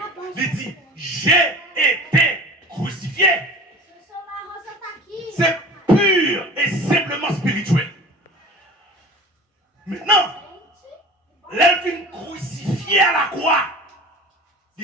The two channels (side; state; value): both; normal; correlation 0.38